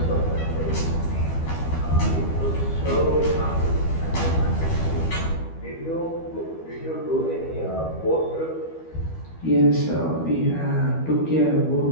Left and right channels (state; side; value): late; right; 12 ms